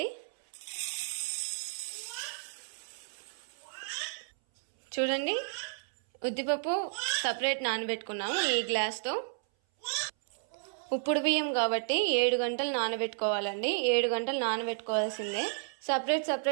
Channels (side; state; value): left; silent; 56 dB below the other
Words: చూడండి, ఉద్దిపప్పు సపరేట్ నానబెట్టుకున్నాము ఈ గ్లాస్తో. ఉప్పుడు బియ్యం కాబట్టి 7 గంటలు నానబెట్టుకోవాలండి. 7 గంటలు నానబెట్టుకోవాల్సిందే.